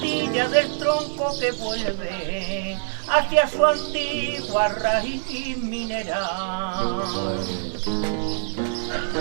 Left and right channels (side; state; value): left; silent; digital silence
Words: del tronco que vuelve hacia su antigua raíz mineral.